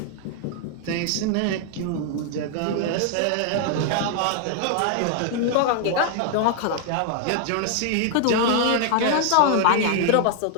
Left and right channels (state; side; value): different; both; correlation 0.00